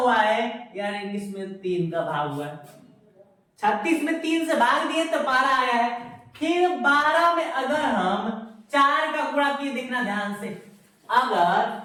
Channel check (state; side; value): identical; both; correlation 1.00